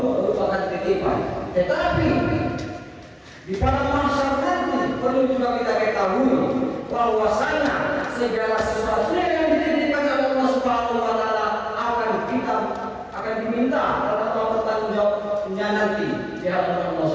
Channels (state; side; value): identical; both; correlation 1.00